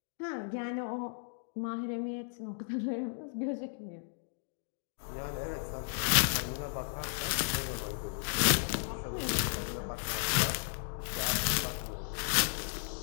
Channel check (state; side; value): silent; right; digital silence